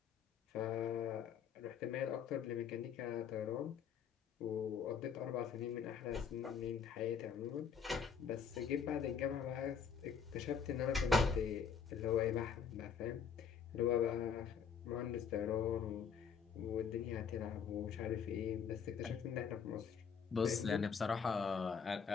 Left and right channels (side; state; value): right; quieter; 6.9 dB